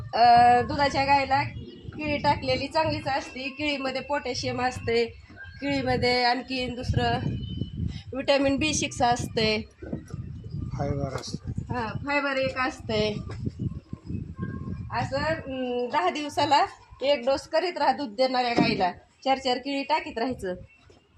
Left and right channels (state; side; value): identical; both; correlation 1.00